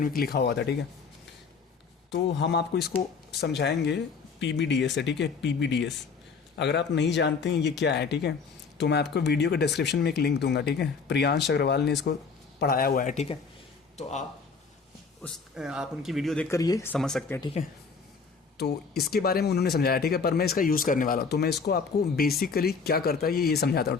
लिखा हुआ था, ठीक है। तो हम आपको इसको समझाएंगे PBDS से, ठीक है, PBDS। अगर आप नहीं जानते हैं ये क्या है, ठीक है, तो मैं आपको वीडियो के डिस्क्रिप्शन में एक लिंक दूंगा, ठीक है। प्रियांश अग्रवाल ने इसको पढ़ाया हुआ है, ठीक है। तो आप उनकी वीडियो देखकर ये समझ सकते हैं, ठीक है। तो इसके बारे में उन्होंने समझाया, ठीक है, पर मैं इसका यूज़ करने वाला हूँ, तो मैं इसको आपको बेसिकली क्या करता है ये समझाता हूँ,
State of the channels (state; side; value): quieter; right; 5.2 dB